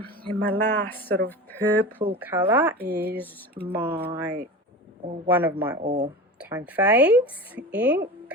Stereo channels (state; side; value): normal; both; correlation 0.30